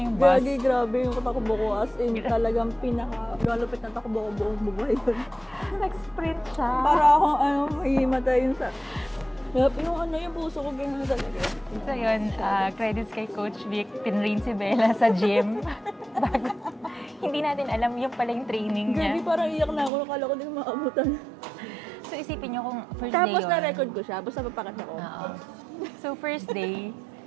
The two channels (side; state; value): left; drops out; at 19.9 s